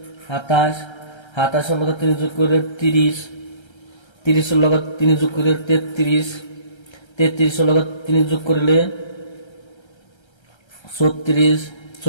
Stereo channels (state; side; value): late; right; 1.3 ms